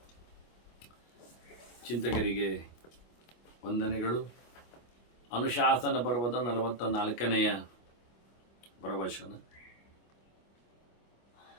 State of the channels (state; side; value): late; right; 25 ms